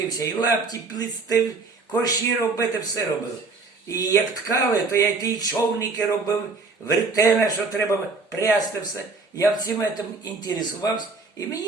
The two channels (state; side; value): quieter; left; 4.0 dB